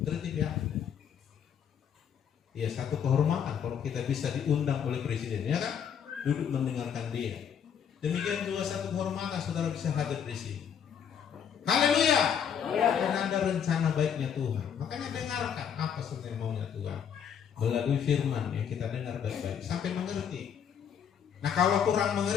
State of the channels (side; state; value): right; quieter; 8.0 dB